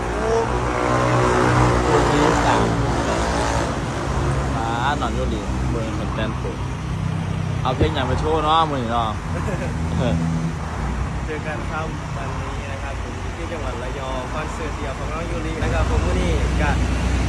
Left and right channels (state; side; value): identical; both; correlation 1.00